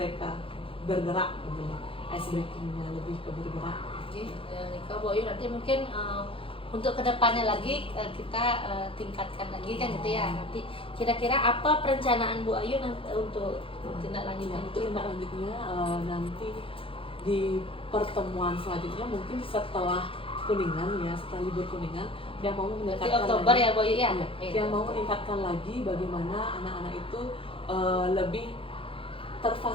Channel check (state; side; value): late; right; 0.26 ms